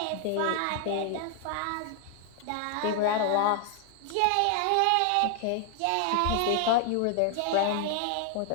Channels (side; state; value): both; different; correlation 0.00